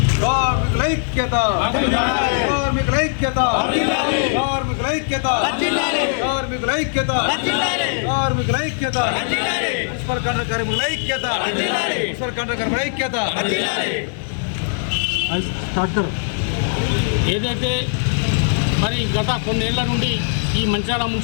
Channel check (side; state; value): right; silent; 57 dB below the other